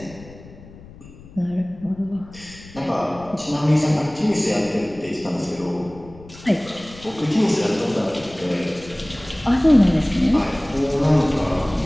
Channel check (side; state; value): left; noise; rumble, 20 dB below the sound